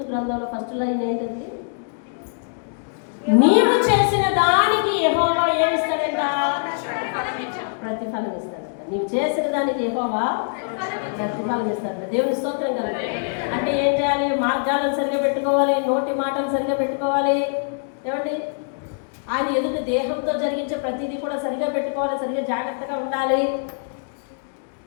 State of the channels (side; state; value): right; silent; digital silence